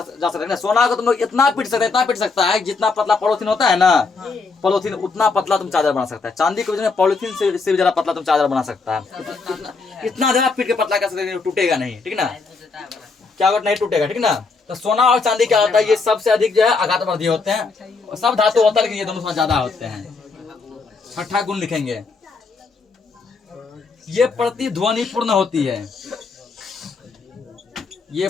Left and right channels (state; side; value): quieter; right; 4.3 dB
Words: है ना। सोना को तुम लोग इतना पीट सकता है जितना पतला पॉलिथीन होता है ना, पॉलिथीन उतना पतला तुम चादर बना सकता है। चांदी को पॉलिथीन से भी ज्यादा पतला तुम चादर बना सकता है। इतना ज्यादा पीट के पतला कर सकते हैं, टूटेगा नहीं, ठीक ना। क्या होगा? नहीं टूटेगा, ठीक ना। तो सोना और चांदी क्या होता है? ये सबसे अधिक जो है आघात वर्धी होते हैं। सब धातु होता है लेकिन ये दोनों ज्यादा होते हैं। 6ठा गुण लिखेंगे, ये प्रतिध्वनिपूर्ण होती है। ये